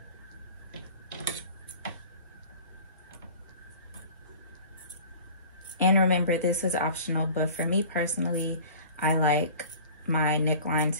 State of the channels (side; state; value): both; inverted; correlation -0.43